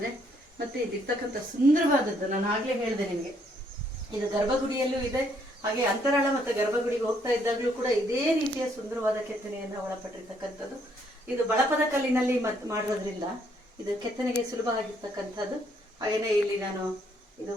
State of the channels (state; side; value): normal; both; correlation 0.70